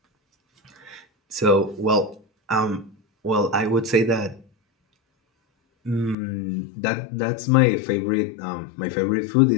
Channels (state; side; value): drops out; right; at 6.2 s